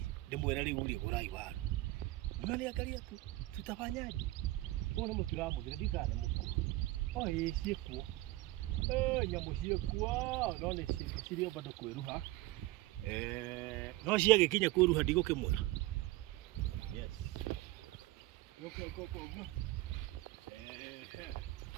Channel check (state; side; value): quieter; left; 18.7 dB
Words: ndĩmwĩre rĩu rĩ gũrai waru mnaniangalia tu tutafanyaje mbona mũtiramũthira ndikane mũkuru ciĩkuo nyamũ ciĩkuo no nĩ cirĩ bado kwĩruha no ciagĩkinya kwĩruha ndigũkĩmwĩra yes uguo